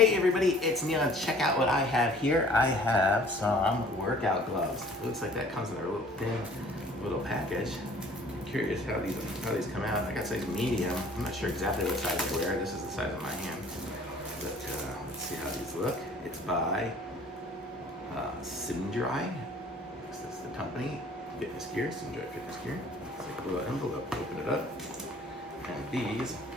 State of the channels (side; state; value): both; normal; correlation 0.53